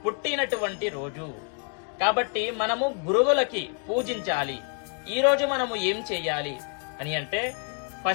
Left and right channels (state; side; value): quieter; right; 38.3 dB